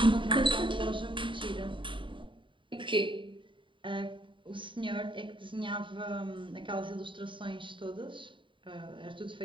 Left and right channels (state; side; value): late; left; 0.24 ms